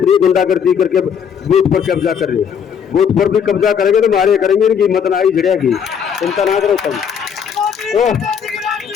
नहीं गुंडागर्दी करके बूथ पर कब्जा कर ले, बूथ पर भी कब्जा करेंगे तो मारे करेंगे, इनकी हिम्मत ना ही झड़ेगी, चिंता ना करो तुम।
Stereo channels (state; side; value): quieter; right; 7.5 dB